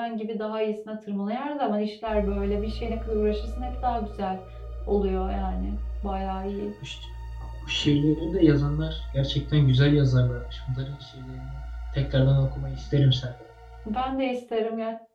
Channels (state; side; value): identical; both; correlation 1.00